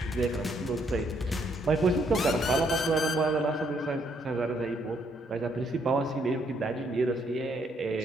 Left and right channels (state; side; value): normal; both; correlation 0.71